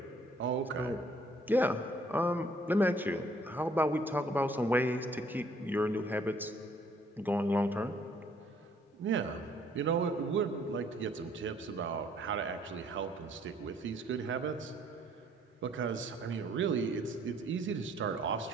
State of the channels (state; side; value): normal; both; correlation 0.62